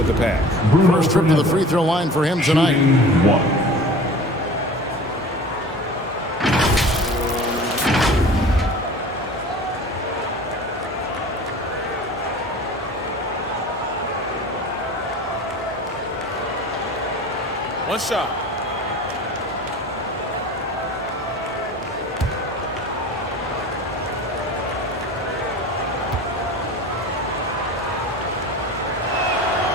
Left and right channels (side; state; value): both; normal; correlation 0.40